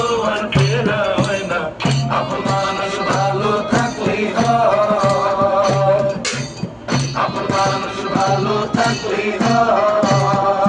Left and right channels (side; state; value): both; identical; correlation 1.00